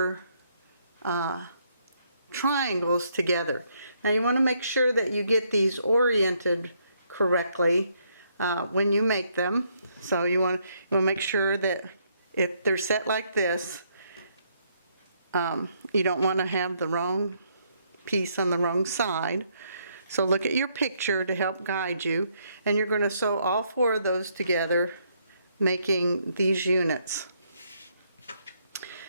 triangles together. Now you want to make sure that you get these oriented correctly when you make them. So you want to make sure that if they're set like this, you don't want to have the wrong piece on the wrong side. So look at your picture to help guide you, and you're going to sew all 4 of those together, making these units.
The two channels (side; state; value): both; inverted; correlation -0.72